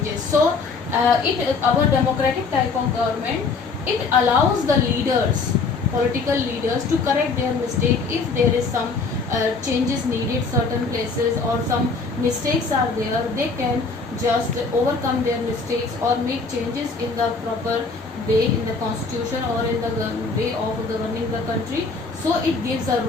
So our democratic type of government, it allows the leaders, political leaders, to correct their mistake if there is some changes needed certain places or some mistakes are there. They can just overcome their mistakes or make changes in the proper way in the constitution or in the way of governing the country. So it gives a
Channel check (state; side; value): quieter; right; 4.3 dB